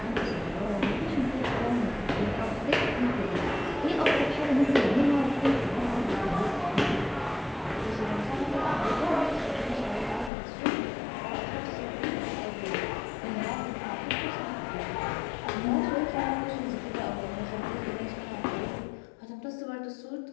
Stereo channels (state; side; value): drops out; right; at 10.3 s